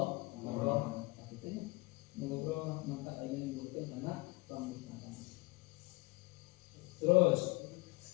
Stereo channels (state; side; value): quieter; right; 24.4 dB